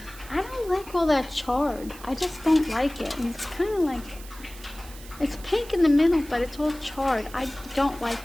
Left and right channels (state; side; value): noise; right; hiss, 18 dB below the sound